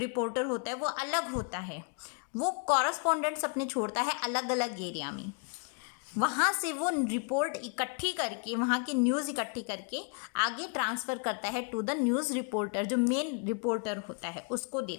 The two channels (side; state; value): right; quieter; 39.3 dB